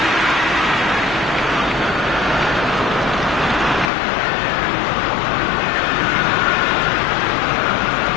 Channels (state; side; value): drops out; right; at 3.9 s